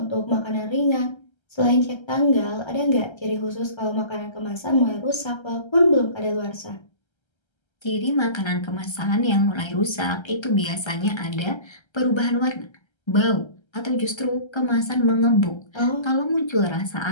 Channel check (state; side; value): late; right; 1.3 ms